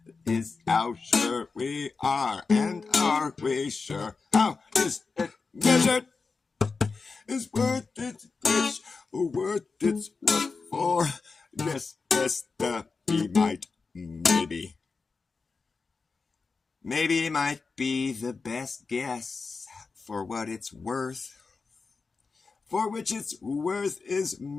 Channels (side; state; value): right; quieter; 4.5 dB